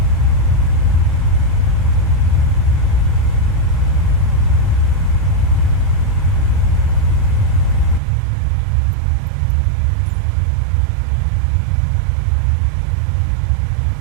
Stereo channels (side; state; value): left; drops out; at 8.0 s